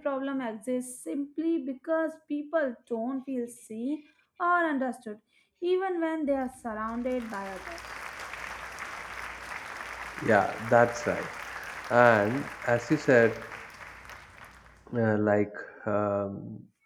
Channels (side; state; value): both; identical; correlation 1.00